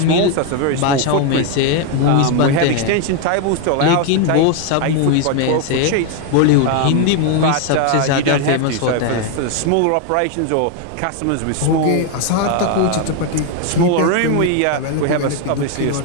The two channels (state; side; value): different; both; correlation 0.01